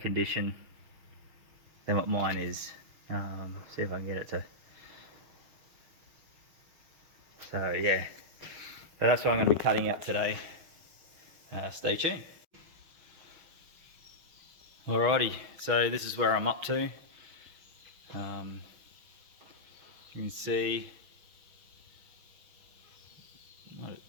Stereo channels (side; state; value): left; late; 6.2 ms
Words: than what mine is. See if I can get it to, so yeah, so that's what I'm going to be cutting out today. Stay tuned. Alrighty, so this is where I'm up to. You can see not